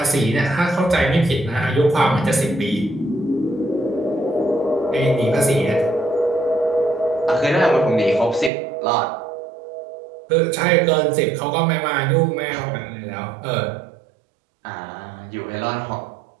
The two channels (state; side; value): drops out; left; at 8.5 s